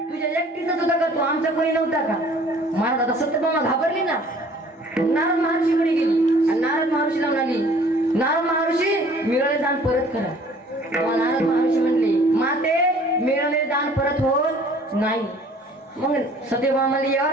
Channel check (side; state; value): both; normal; correlation 0.53